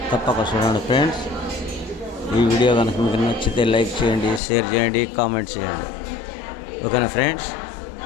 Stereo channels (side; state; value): right; drops out; at 4.4 s